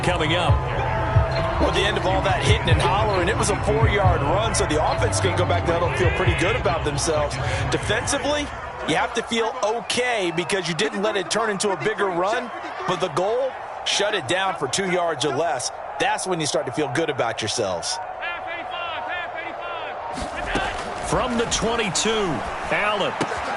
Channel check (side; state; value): both; identical; correlation 1.00